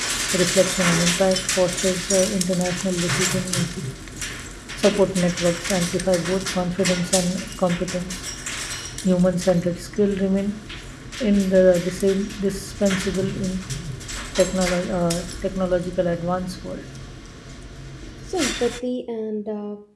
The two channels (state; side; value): identical; both; correlation 1.00